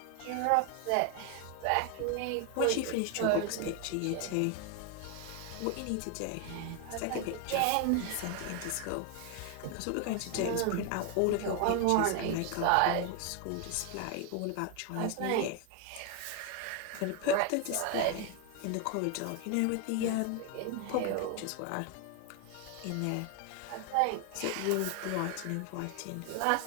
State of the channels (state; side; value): different; both; correlation 0.01